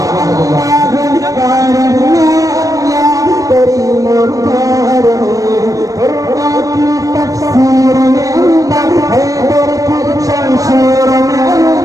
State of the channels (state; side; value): late; left; 0.16 ms